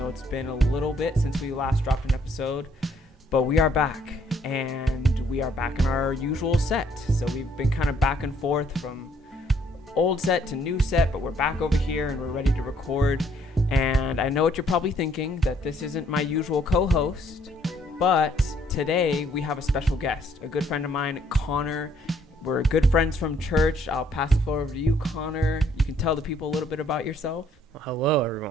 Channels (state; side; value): normal; both; correlation 0.66